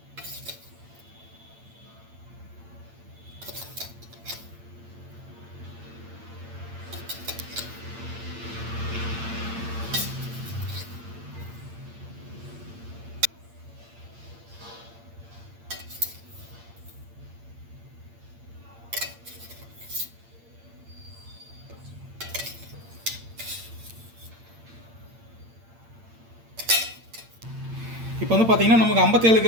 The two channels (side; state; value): left; late; 8.8 ms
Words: இப்போ வந்து பார்த்தீங்கன்னா நமக்கு 57